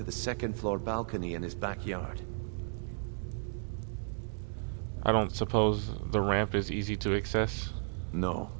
the second-floor balcony in his backyard. I don't suppose the ramp is easy to access? No.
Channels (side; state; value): left; silent; 55 dB below the other